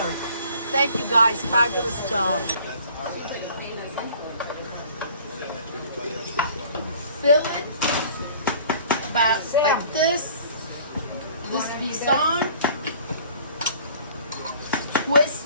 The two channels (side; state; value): both; inverted; correlation -0.52